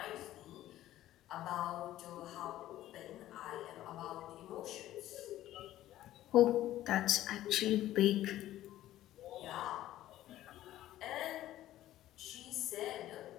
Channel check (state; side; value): quieter; right; 14.0 dB